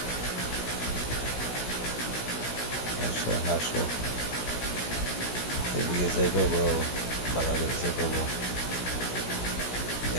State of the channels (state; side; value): late; right; 16 ms